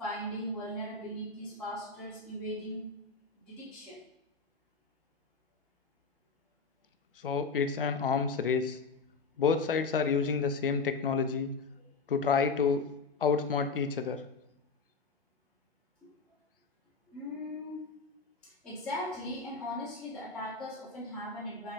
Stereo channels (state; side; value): quieter; right; 4.5 dB